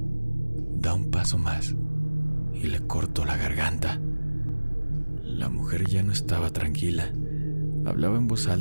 Da un paso más y le corto la garganta. La mujer ya no estaba tranquila. Hablaba en voz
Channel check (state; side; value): inverted; both; correlation -1.00